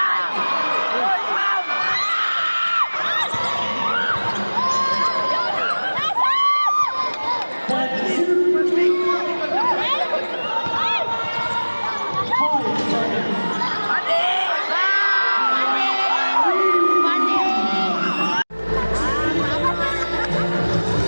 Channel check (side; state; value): both; inverted; correlation -1.00